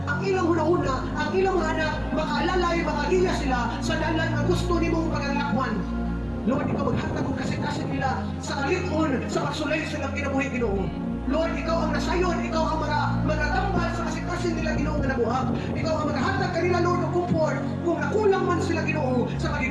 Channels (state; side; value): identical; both; correlation 1.00